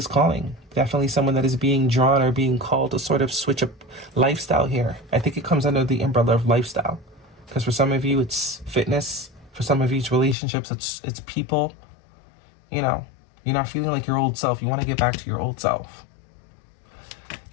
calling? Definitely someone that is being drawn or being called to sort of switch up lifestyle here. I think it comes under the umbrella of lifestyle. Because for some of you, it's fitness. For some of you, it's relationships. It's people. You're not feeling like your old self. You want to get back to your old self.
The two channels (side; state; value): right; drops out; at 10.4 s